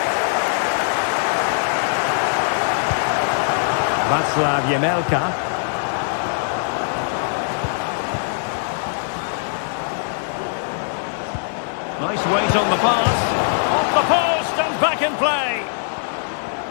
Václav Jemelka. Nice weight on the pass. Off the post and back in play.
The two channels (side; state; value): right; silent; 65 dB below the other